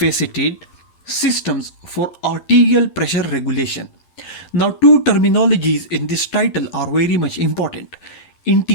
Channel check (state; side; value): late; right; 11 ms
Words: Systems for Arterial Pressure Regulation. Now, two terminologies in this title are very much important: